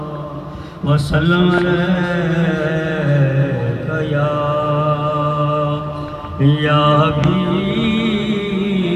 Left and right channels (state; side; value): identical; both; correlation 1.00